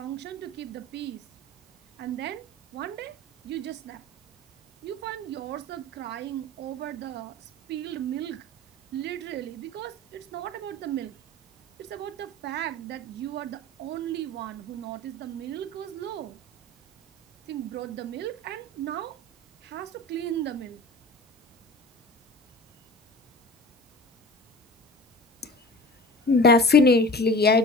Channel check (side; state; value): both; normal; correlation 0.38